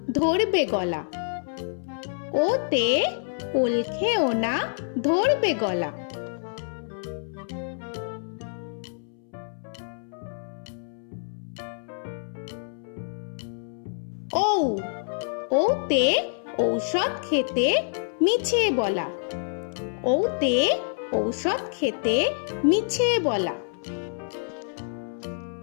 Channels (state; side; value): silent; right; 60 dB below the other